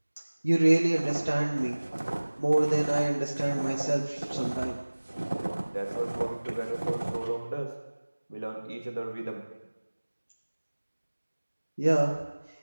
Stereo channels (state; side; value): inverted; both; correlation -1.00